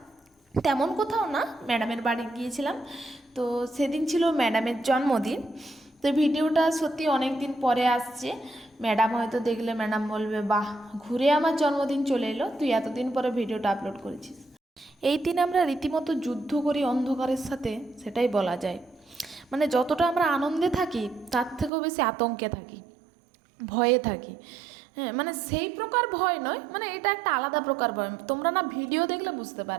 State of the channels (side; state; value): left; drops out; at 21.7 s